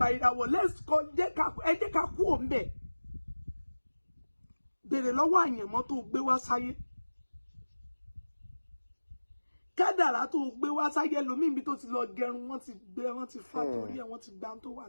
ìràwọ̀ let's call ẹ jẹ́ ká kú òun bẹ̀. Bèrè lọ́wọ́ àyànmọ́ tó gbé wá sáyé. Kádàrá tó gbé wá sáyé lómi ibi tó ti lọ gẹrun wọ́n ti fà torí ẹ̀ wọ́n ti gbá tó wà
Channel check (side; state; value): both; inverted; correlation -1.00